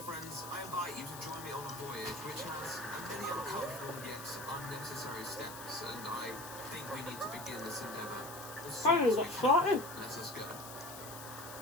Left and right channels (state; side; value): noise; left; hiss, 12 dB below the sound